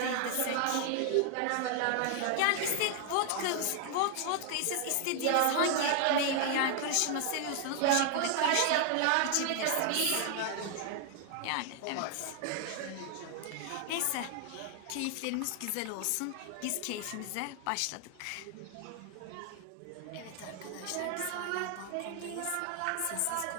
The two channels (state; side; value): different; both; correlation 0.00